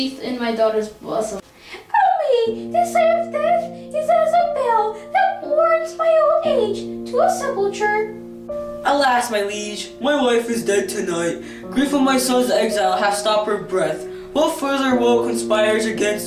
in my daughter's bosom. Oh me, this sight of death is as a bell that warns my old age to a sepulchre. Alas, my liege, my wife is dead tonight. Grief of my son's exile hath stopped her breath. What further woe conspires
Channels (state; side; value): identical; both; correlation 1.00